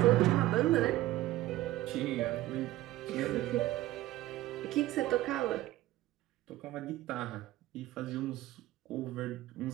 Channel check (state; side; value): quieter; left; 16.0 dB